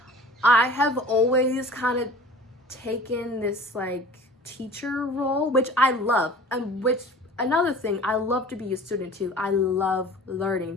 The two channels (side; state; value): both; normal; correlation 0.44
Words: I have always kind of taken this like teacher role, which I love, and which, another thing, I love to be a student too. I love